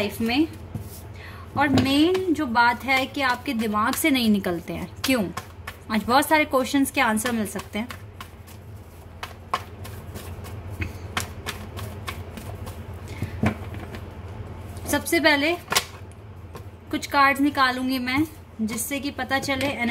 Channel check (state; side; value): identical; both; correlation 1.00